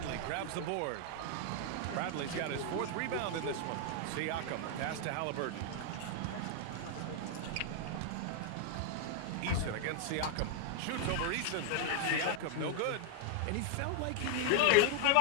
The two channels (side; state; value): both; different; correlation 0.00